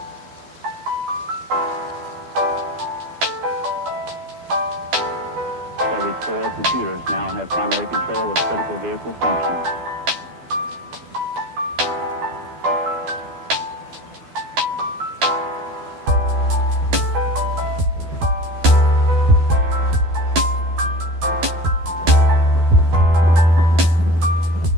Every 4 computers now have primary control of critical vehicle functions.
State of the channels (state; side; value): late; left; 12 ms